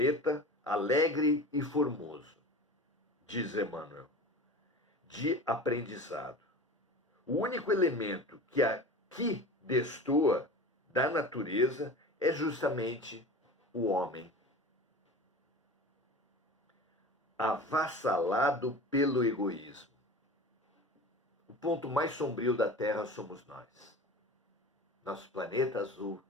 alegre e formoso, diz Emmanuel, de aprendizado. O único elemento que aqui destoa da natureza é justamente o homem, avassalado pelo egoísmo. O ponto mais sombrio da Terra somos nós. Nosso planeta azul,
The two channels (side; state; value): both; normal; correlation 0.34